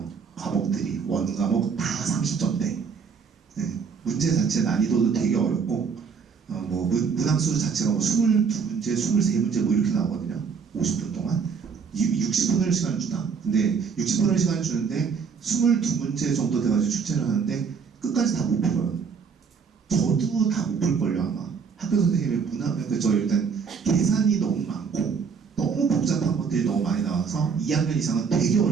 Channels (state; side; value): quieter; left; 5.9 dB